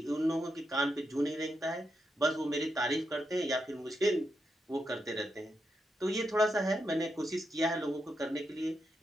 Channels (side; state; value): both; normal; correlation 0.84